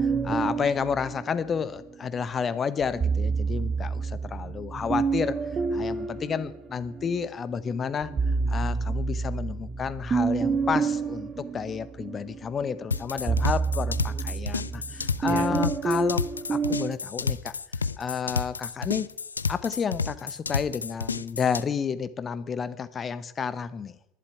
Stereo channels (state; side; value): normal; both; correlation 0.57